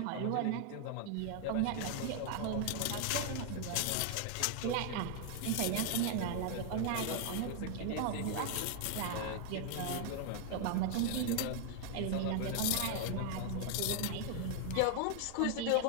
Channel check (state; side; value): different; both; correlation 0.00